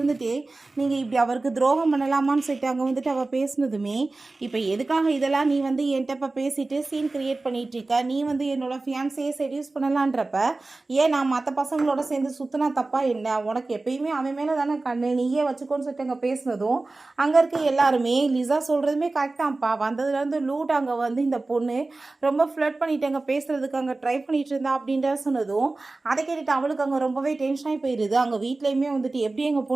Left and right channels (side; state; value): left; quieter; 3.3 dB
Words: நீங்கள் இப்படி அவருக்கு துரோகம் பண்ணலாமான்னு சொல்லிட்டு அங்கே வந்துட்டு அவள் பேசினதுமே, இப்போ எதுக்காக இதெல்லாம் நீ வந்து என்கிட்ட இப்போ பேசிட்டு சீன் க்ரியேட் பண்ணிகிட்ருக்க, நீ வந்து என்னோடய ஃபியான்ஸையே செடியூஸ் பண்ணலான்றப்ப ஏன் நான் மற்ற பசங்களோட சேர்ந்து சுற்றினா தப்பா என்ன, உனக்கு எப்பயுமே அவன் மேலே தானே கண்ணு, நீயே வச்சுக்கோன்னு சொல்லிட்டு அங்கே பேசினதும் அங்கே இருக்க எல்லாருமே லிசா சொல்கிறதுமே கரெக்டாகப்பா, வந்ததுலேருந்து லூட் அங்கே வந்து இந்த பொண்ணு ரொம்ப ஃப்ளட் பண்ணிட்டு அங்கே பேசுகிறதுக்கு அங்கே ட்ரை பண்ணிகிட்டு இருந்தா அப்படின்ற சொன்னதும் அதை கேட்டுட்டு அவளுக்கு அங்கே ரொம்பவே டென்ஷனாகி போயிடுது. அங்கே வீட்லேயுமே வந்துட்டு எப்படி எங்கள்